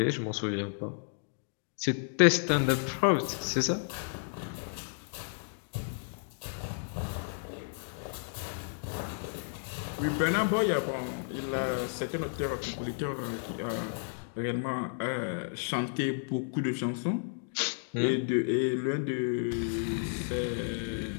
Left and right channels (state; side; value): silent; right; digital silence